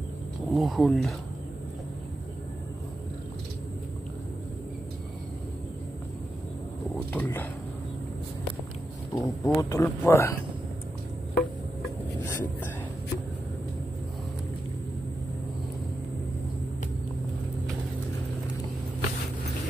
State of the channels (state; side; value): normal; both; correlation 0.89